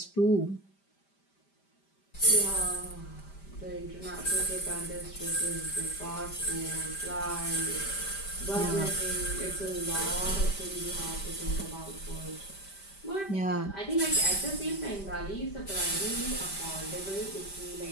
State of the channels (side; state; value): right; late; 5.1 ms